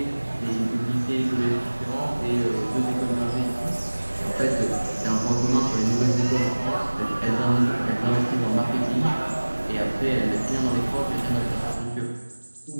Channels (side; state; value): both; inverted; correlation -1.00